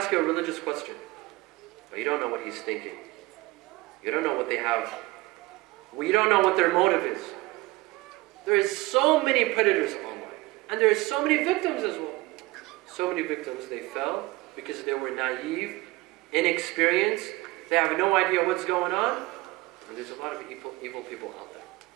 you a religious question. But you don't know what he's thinking. You don't know what they have. We don't know what their motive is. There is so many predators online. And there are so many victims as well. So many victims, they fell because they were naive, inexperienced. They have no idea what's going on. And there's a lot of evil people out there.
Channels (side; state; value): left; quieter; 20.9 dB